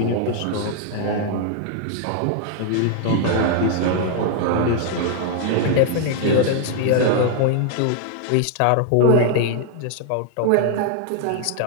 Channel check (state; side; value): different; both; correlation 0.00